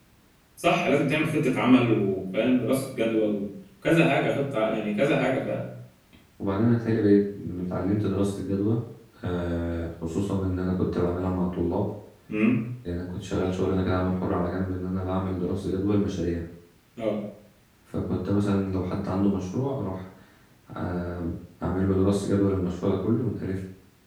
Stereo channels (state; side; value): identical; both; correlation 1.00